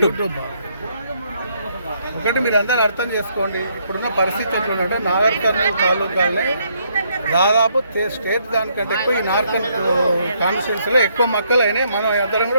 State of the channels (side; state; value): both; inverted; correlation -0.72